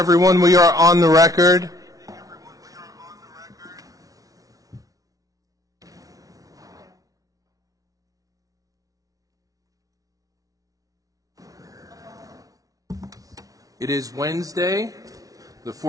We are on the record. It is Wednesday, the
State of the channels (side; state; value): left; late; 0.18 ms